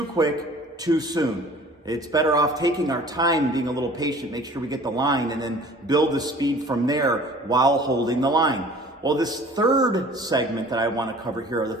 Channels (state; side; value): normal; both; correlation 0.48